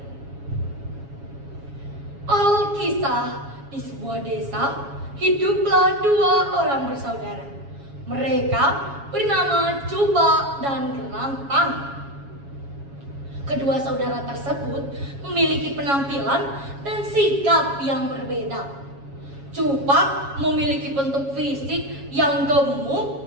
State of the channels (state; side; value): late; left; 7.2 ms